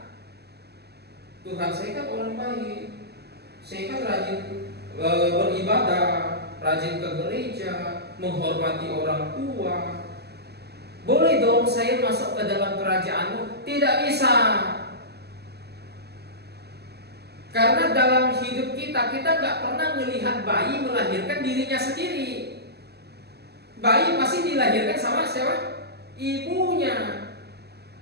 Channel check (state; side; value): late; left; 0.47 ms